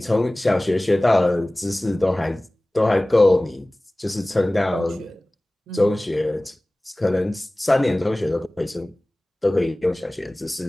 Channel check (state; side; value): normal; both; correlation 0.98